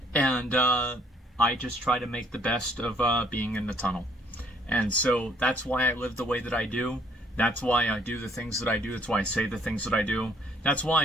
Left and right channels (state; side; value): normal; both; correlation 0.63